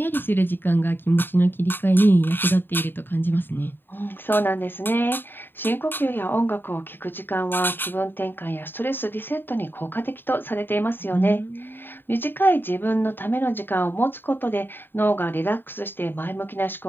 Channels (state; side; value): late; right; 0.097 ms